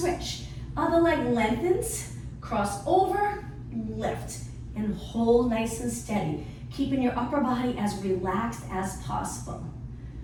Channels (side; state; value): both; identical; correlation 1.00